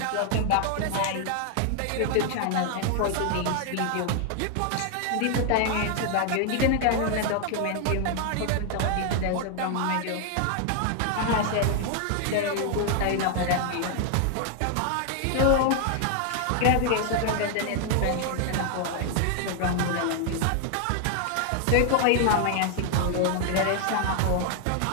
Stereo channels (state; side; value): different; both; correlation 0.00